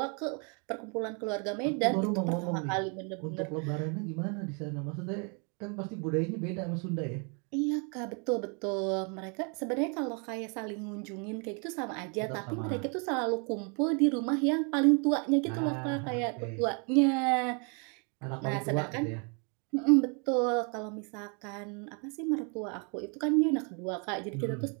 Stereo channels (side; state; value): left; quieter; 36.3 dB